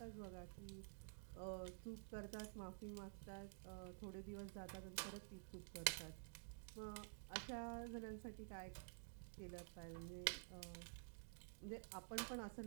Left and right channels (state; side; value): silent; left; digital silence